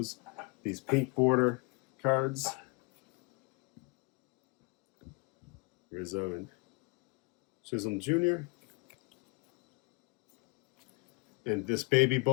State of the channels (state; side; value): quieter; right; 30.2 dB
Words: These pink border cards. Rizzo and Chisholm Jr. And this Baby